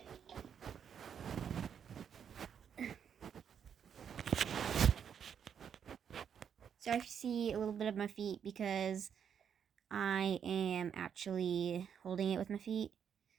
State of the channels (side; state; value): left; quieter; 7.9 dB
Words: Sorry if you see a little bit of my feet because I am actually holding it with my feet.